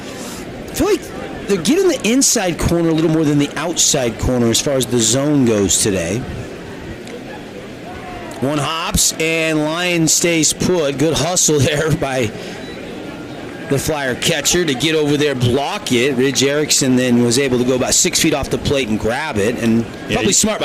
feel like they're getting the inside corner a little more than the outside corner as far as the zone goes today. 1 hops, and Lyon stays put. Good hustle there by the Flyer catcher to get over there, block it. Ridge Erickson then was able to go about 6 feet off the plate and grab it, and probably smart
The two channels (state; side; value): identical; both; correlation 1.00